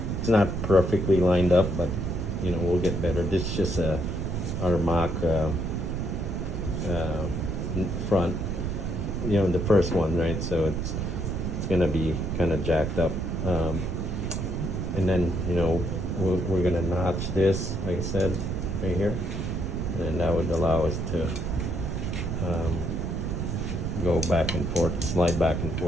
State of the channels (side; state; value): right; noise; rumble, 2 dB below the sound